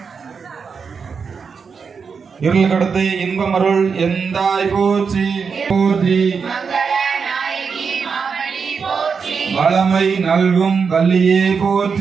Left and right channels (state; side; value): quieter; left; 5.7 dB